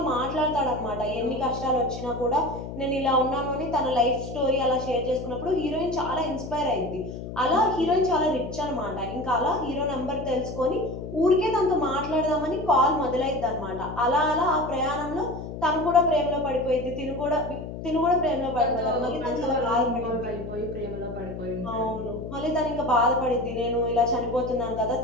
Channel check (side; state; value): left; noise; hum, 9 dB below the sound